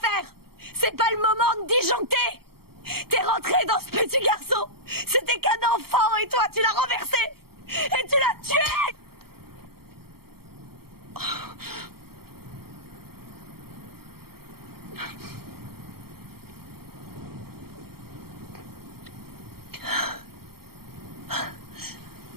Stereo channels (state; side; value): late; left; 0.95 ms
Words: C'est pas le moment de disjoncter! T'es rentré dans ce petit garçon! C'était qu'un enfant et toi, tu l'as renversé! Et tu l'as tué!